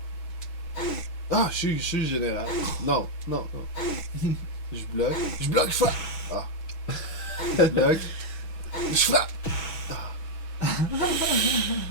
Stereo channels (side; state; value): right; late; 6.1 ms